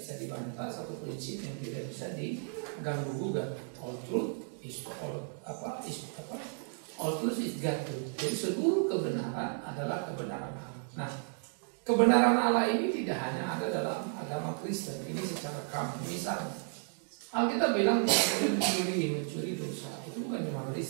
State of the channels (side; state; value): left; silent; 55 dB below the other